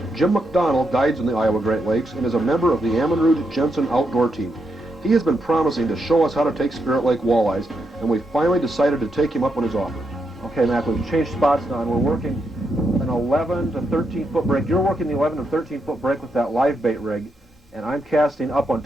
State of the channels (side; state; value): both; normal; correlation 0.82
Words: Jim McDonnell guides in the Iowa Great Lakes and is a member of the Bob Jensen outdoor team. He has been promising to show us how to take Spirt Lake walleyes, and we finally decided to take him up on his offer. Okay, Mac, we've changed spots now, and we're working an 11 to 13 foot break. You're working the 11 to 13 foot break with that live bait rig, and I'm casting up on